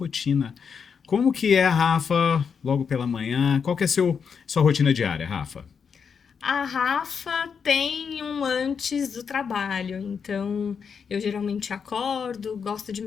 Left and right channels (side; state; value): right; quieter; 6.4 dB